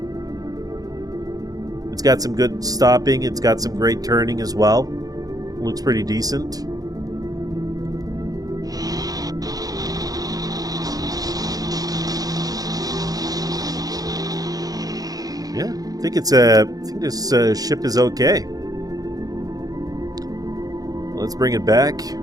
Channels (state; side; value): late; left; 0.18 ms